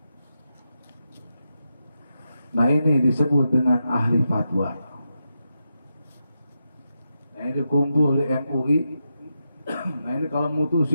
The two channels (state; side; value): inverted; both; correlation -0.87